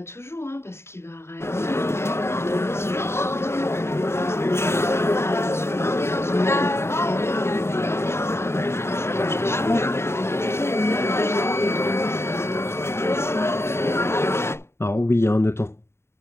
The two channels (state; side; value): late; right; 0.12 ms